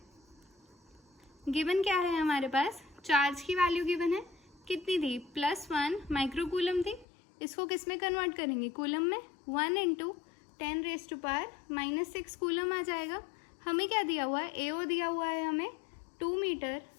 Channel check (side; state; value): right; drops out; at 7.1 s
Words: गिवन क्या है हमारे पास, चार्ज की वैल्यू गिवन है, कितनी थी, +1 माइक्रोकूलम थी। इसको किस में कन्वर्ट करेंगे, कूलम में, 1 × 10⁻⁻6 कूलम आ जाएगा। हमें क्या दिया हुआ है, AO दिया हुआ है हमें 2 मीटर